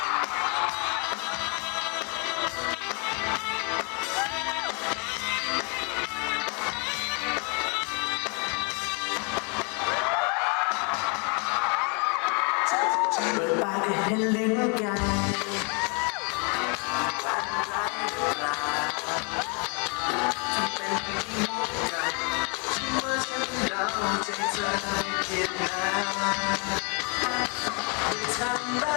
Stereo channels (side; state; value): right; quieter; 35.2 dB